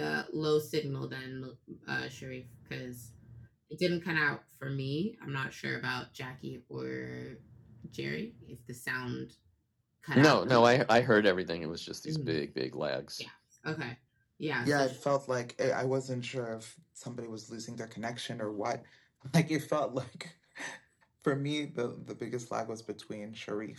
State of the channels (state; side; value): identical; both; correlation 1.00